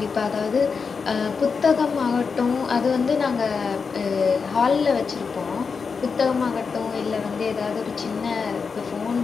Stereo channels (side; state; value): right; quieter; 5.3 dB